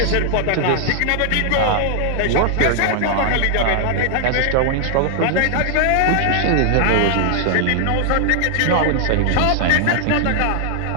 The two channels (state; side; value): different; both; correlation 0.00